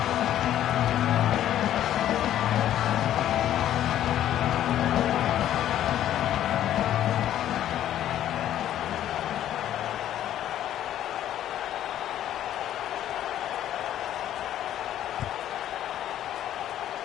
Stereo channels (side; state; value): right; quieter; 11.7 dB